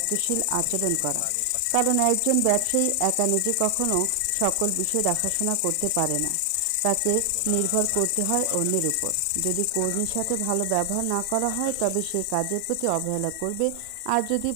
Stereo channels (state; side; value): different; both; correlation 0.00